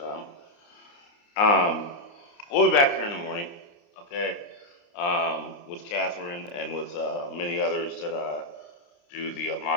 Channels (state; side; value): late; right; 29 ms